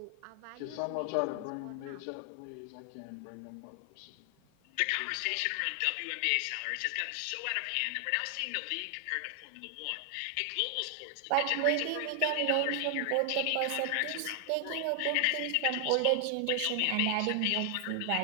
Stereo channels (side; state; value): both; different; correlation 0.00